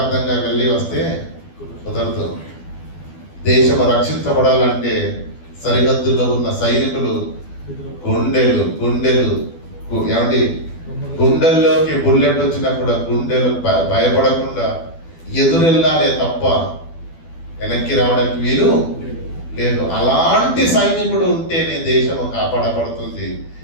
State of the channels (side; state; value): right; late; 12 ms